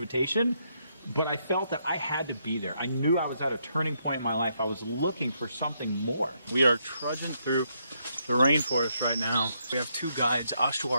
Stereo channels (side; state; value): both; inverted; correlation -0.77